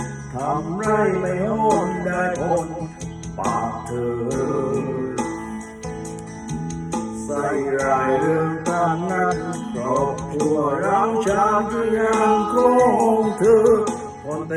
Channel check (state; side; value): identical; both; correlation 1.00